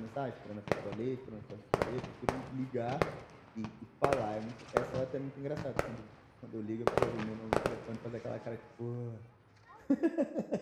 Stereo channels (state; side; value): identical; both; correlation 1.00